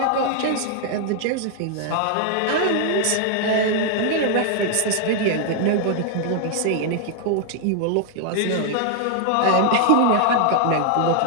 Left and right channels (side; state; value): both; different; correlation 0.00